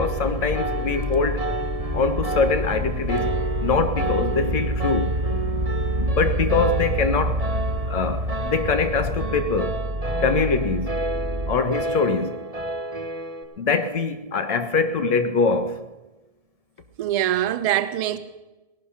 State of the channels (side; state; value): left; late; 1.7 ms